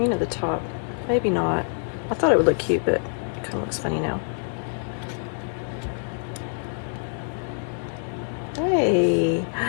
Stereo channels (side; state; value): right; silent; 61 dB below the other